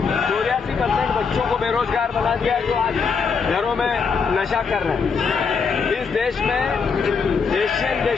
84% बच्चों को बेरोजगार बना दिया, जो आज घरों में नशा कर रहे हैं। इस देश में, एशियन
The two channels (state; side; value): quieter; right; 5.5 dB